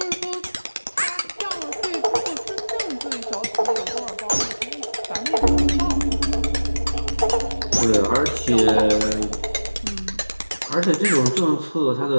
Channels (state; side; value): inverted; both; correlation -1.00